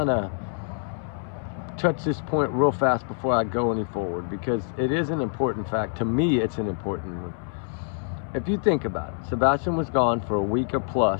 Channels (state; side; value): silent; right; 58 dB below the other